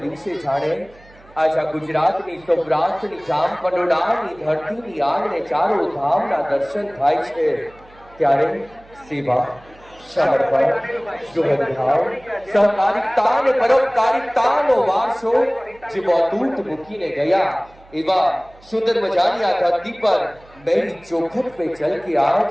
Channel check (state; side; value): noise; right; hum, 26 dB below the sound